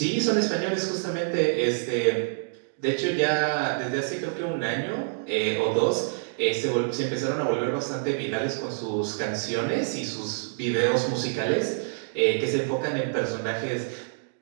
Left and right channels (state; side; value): silent; left; digital silence